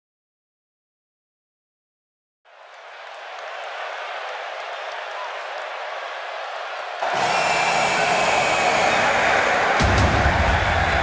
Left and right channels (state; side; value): identical; both; correlation 1.00